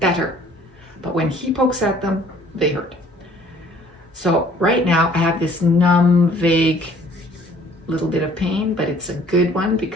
But when he pokes at them, they hurt. So right now I have this numb, vague little bit of pain, but it's a good one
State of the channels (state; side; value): normal; both; correlation 0.56